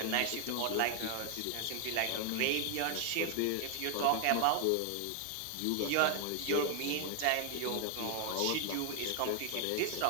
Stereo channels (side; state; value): both; different; correlation 0.00